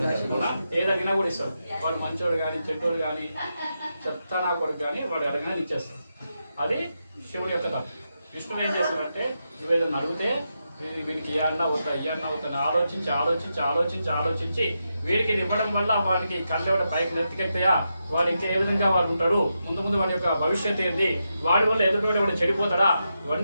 ఏది అడిగినా కూడా ఇస్తాడు. వాడు మంచోడు కానీ చెడ్డోడు కానీ చెత్త నా కొడుకు కానీ వాడు అడిగినా ఇచ్చేస్తాడు. అది శివుడి యొక్క తప్పు. విష్ణువు ఏం చేస్తాడంటే నువ్వేదన్నా అడిగితే వీడికి ఇయ్యన్నా వద్దా ఆలోచించి ఆలోచించి ఆలోచించి ఆలోచించి వీడికి ఇది ఇవ్వడం వల్ల వాడికి కళ్ళెవడ పైకి నెత్తికెళ్తాయా, వాడు ఇంకా ఏ విధంగా వాడు ఉంటాడు, ముందు వాడి యొక్క భవిష్యత్తు ఏంది, వాడి వల్ల ఎదుటి వాడు చెడిపోతాడా,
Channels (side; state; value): both; inverted; correlation -0.86